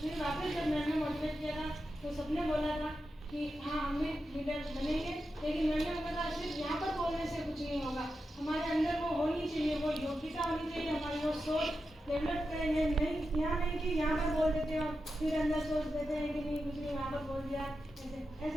वापस जब मैम ने मोटिवेट किया था तो सबने बोला था कि हाँ हम भी लीडर बनेंगे, लेकिन मैंने बोला था सिर्फ यहाँ पर बोलने से कुछ नहीं होगा, हमारे अंदर वो होनी चाहिए, वो योग्यता होनी चाहिए, हमारी वो सोच डेवलप करेंगे। नहीं यहाँ नहीं कि यहाँ पर बोल देते हो फिर अंदर सोच देते हैं कि नहीं कुछ नहीं यहाँ पर बोल दिया, ऐसे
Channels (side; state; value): both; normal; correlation 0.89